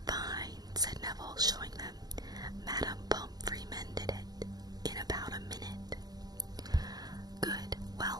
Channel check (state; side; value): late; left; 0.19 ms